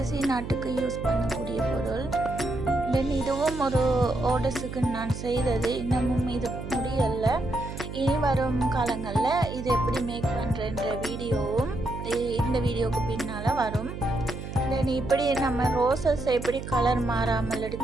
ஆர்ட்டுக்கு யூஸ் பண்ணக்கூடிய பொருள். தென் இதுவும் ஒரு ஆர்டர்ஸுக்கு நான் செய்தது, இன்னமும் இது முடியலை. இனி வரும் காலங்களில் இது எப்படி மேக் பண்ணுறன்ற வீடியோவும் இந்த வீடியோவுக்கு பின்னால் வரும். தென் இப்படி நம்ம ரோசஸ் எப்படி கலர் மாறாமல்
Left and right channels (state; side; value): noise; right; hum, 8 dB below the sound